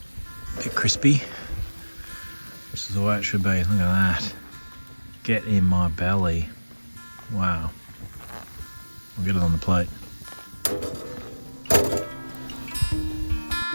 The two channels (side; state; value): both; inverted; correlation -1.00